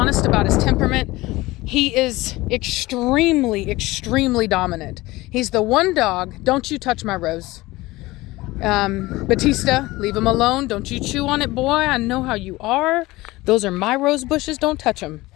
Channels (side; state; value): right; quieter; 19.7 dB